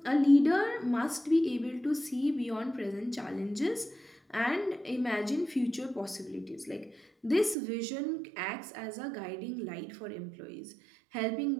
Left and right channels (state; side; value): drops out; left; at 7.6 s